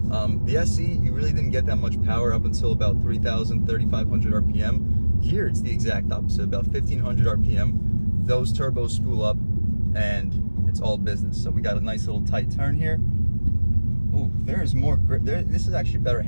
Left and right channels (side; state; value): both; inverted; correlation -1.00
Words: The SE, you really didn't get that much power up until about 3,000, 3,500 RPM. Here, it's the exact opposite, about 1,500 RPM. Those turbos spool up, and it's all business. So we got a nice little tight turn here. Ooh, there is more grip. This is actually better